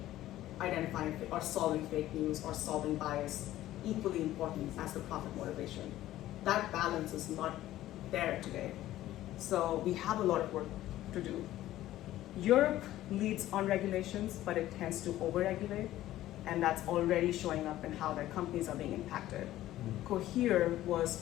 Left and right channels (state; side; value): quieter; right; 14.4 dB